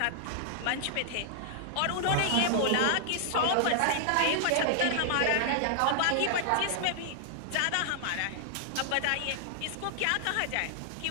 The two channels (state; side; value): different; both; correlation -0.01